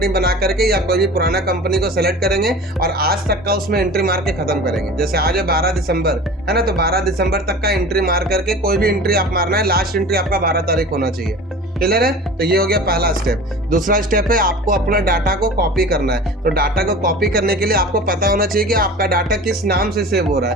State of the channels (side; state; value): both; normal; correlation 0.38